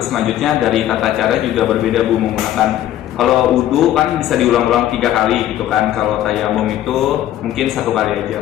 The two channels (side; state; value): right; quieter; 12.6 dB